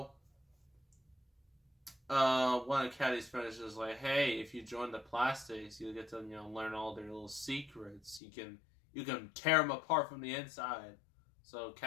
one of Caddy's friends is like, "Hey, if you join the Plastics, you'll get to learn all their little secrets. You can tear them apart from the inside." So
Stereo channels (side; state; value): right; drops out; at 8.2 s